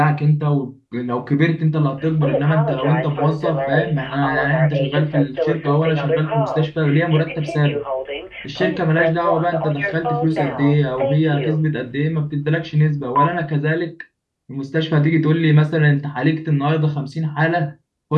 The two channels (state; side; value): identical; both; correlation 1.00